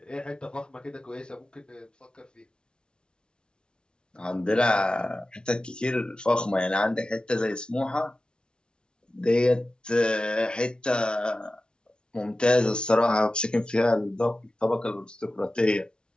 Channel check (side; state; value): right; late; 0.055 ms